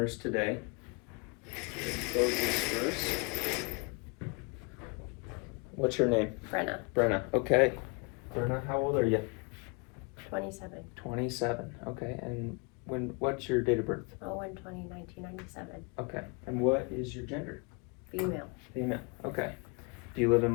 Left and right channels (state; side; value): quieter; right; 31.8 dB